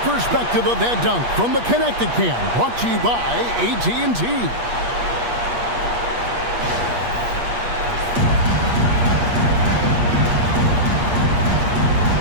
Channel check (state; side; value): late; left; 8.4 ms